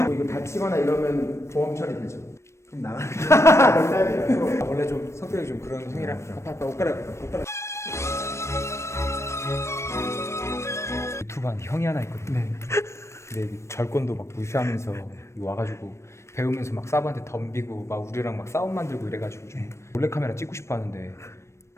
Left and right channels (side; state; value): right; late; 0.13 ms